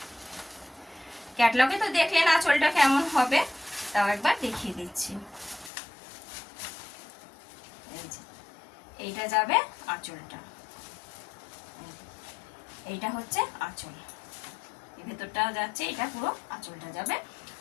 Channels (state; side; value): drops out; right; at 5.7 s